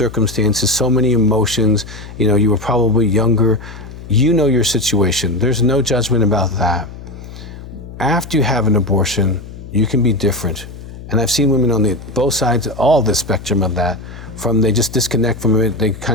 so many emotions. You know, you were probably younger. You know your situation. There's no judgment about that. After you have an abortion, you can be different. And I've seen women on both sides, all the spectrum of that, from they just disconnect from it, they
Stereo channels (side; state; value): left; noise; hum, 14 dB below the sound